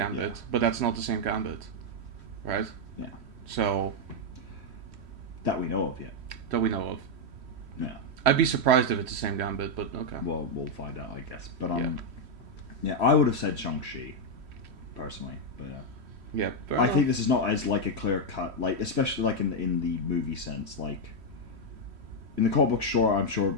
Yeah. but that's not the same Gambit, right? Yeah. So That we know of yet. that we know of. Yeah. I'd be surprised if it's the same Gambit, but okay. Well, we'll find out, I guess. But Yeah. yeah, I would have said Shang-Chi, personally, but yeah. Yeah, fair I enough. think this is not as like a clear cut, like especially like in the movie sense, like in the comic book. Sure, I'm sure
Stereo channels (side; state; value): left; late; 3.1 ms